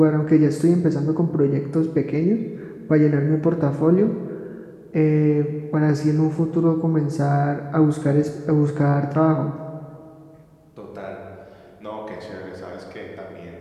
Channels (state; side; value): identical; both; correlation 1.00